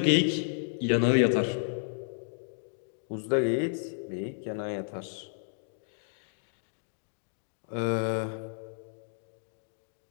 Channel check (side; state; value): right; silent; digital silence